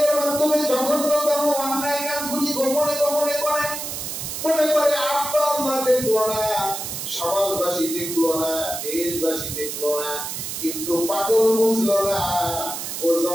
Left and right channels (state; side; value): noise; right; hiss, 6 dB below the sound